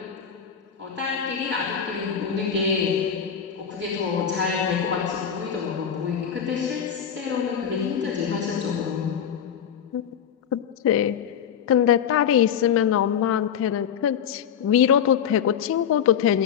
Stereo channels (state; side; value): quieter; right; 8.2 dB